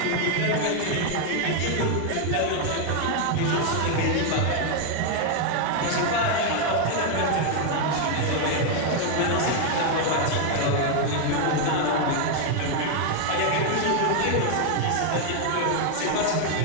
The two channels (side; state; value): both; different; correlation 0.01